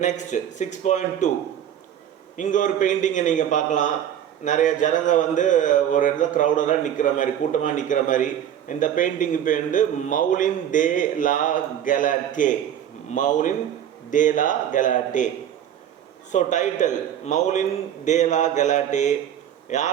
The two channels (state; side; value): quieter; left; 10.1 dB